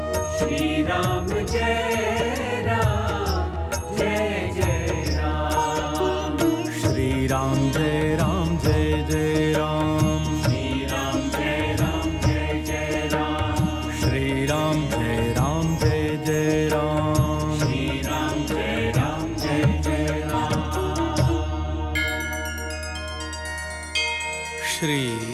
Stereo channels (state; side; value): identical; both; correlation 1.00